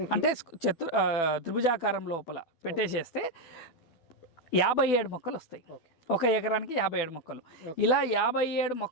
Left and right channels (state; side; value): late; right; 12 ms